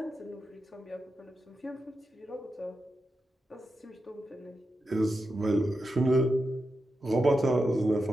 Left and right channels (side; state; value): both; normal; correlation 0.89